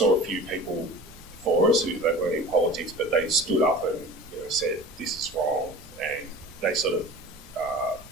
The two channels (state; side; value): noise; right; rumble, 23 dB below the sound